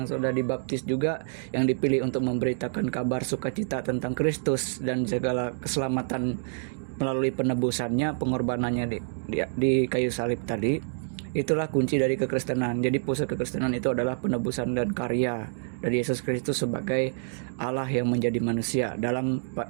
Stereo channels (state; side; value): silent; left; digital silence